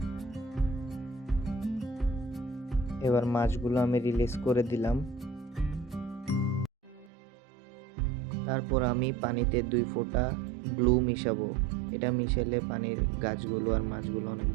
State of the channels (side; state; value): left; drops out; at 7.1 s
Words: এবার মাছগুলো আমি রিলিজ করে দিলাম। তারপর আমি পানিতে 2 ফোঁটা ব্লু মিশাবো। এটা মিশালে পানির গাছগুলো আর মাছগুলো অনেক